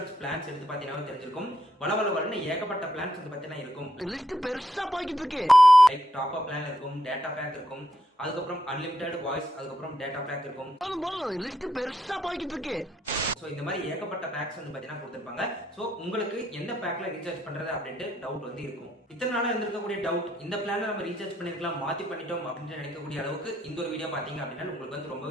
பிளான்ஸ் எடுத்து பாத்தீங்கன்னா தெரிஞ்சிருக்கும். வளவளன்னு ஏகப்பட்ட பிளான்ஸ் வந்து பாத்தீங்கன்னா இருக்கும். லிஸ்ட் பெருசா போய்கிட்டு இருக்கு. லைக் டாப் அப் பிளான் இருக்கும், டேட்டா பேக் இருக்கும், அதுக்கப்புறம் அன்லிமிட்டெட் வாய்ஸ், அதுக்கப்புறம் டேட்டா பேக் இருக்கும். லிஸ்ட் பெருசா போய்கிட்டு இருக்கு. சோ இந்த மாதிரி ஏகப்பட்ட பேக்ஸ் வந்து பாத்தீங்கன்னா கொடுத்திருப்பாங்க. சோ உங்களுக்கு எந்த பேக்ல ரீசார்ஜ் பண்றது அப்படின்ட்டு டவுட் வந்து இருக்கும். இத்தனை நாளா இருந்திருக்கக்கூடிய டவுட், இந்த பிளான்ல நம்ம ரீசார்ஜ் பண்ணிருக்கலாம், மாத்தி பண்ணிட்டோம் அப்படின்னு நினைக்கக்கூடிய அளவுக்கு இந்த ஒரு வீடியோ பாத்தீங்க அப்படின்னா உங்களுக்கு வந்து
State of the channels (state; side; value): normal; both; correlation 0.78